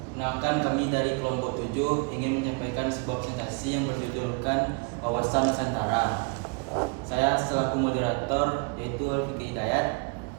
Perkenalkan, kami dari kelompok 7 ingin menyampaikan sebuah presentasi yang berjudulkan Wawasan Nusantara. Saya selaku moderator yaitu Fikri Hidayat.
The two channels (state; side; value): quieter; left; 32.9 dB